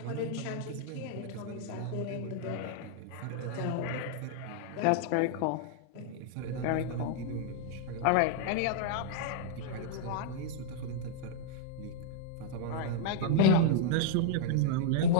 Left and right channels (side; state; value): both; different; correlation -0.01